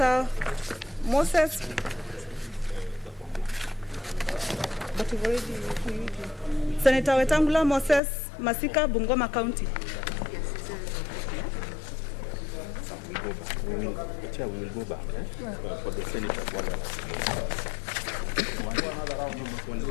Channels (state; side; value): drops out; right; at 8.0 s